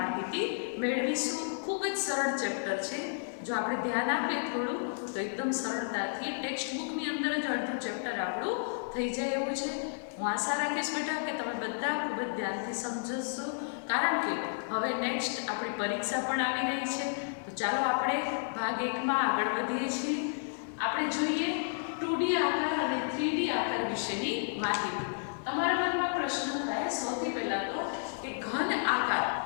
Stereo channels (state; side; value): silent; right; digital silence